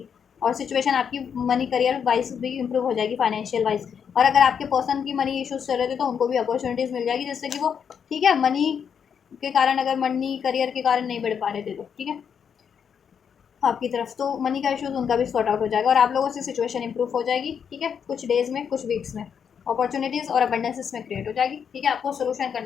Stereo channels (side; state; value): right; quieter; 7.3 dB